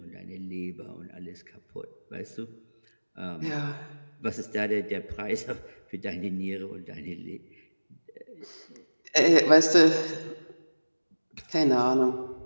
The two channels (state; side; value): inverted; both; correlation -1.00